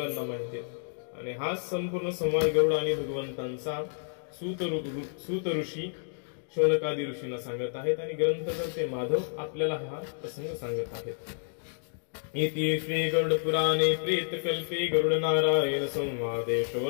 माहिती आहेत. आणि हा संपूर्ण संवाद गरुड आणि भगवंतांचा सूत ऋषी शौनकादी ऋषींना सांगत आहेत आणि ग्रंथकर्ते माधव आपल्याला हा प्रसंग सांगत आहेत. इति श्री गरुड पुराणे प्रेतकल्पे गरुड नारायण संवादे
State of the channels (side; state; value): right; silent; digital silence